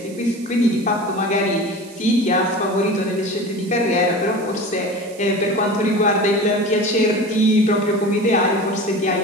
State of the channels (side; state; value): right; noise; hiss, 21 dB below the sound